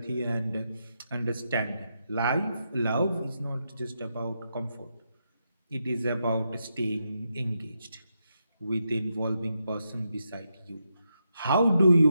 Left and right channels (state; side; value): inverted; both; correlation -0.84